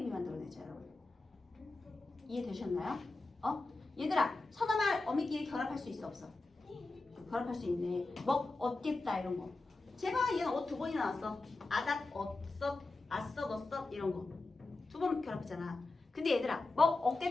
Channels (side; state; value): right; quieter; 3.3 dB